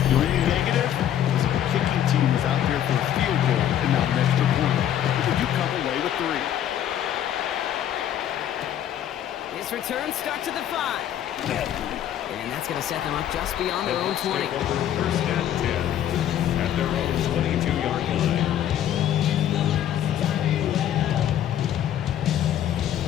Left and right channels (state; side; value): quieter; right; 10.7 dB